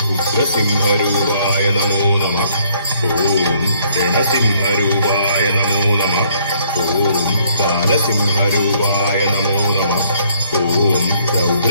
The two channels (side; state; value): both; inverted; correlation -0.65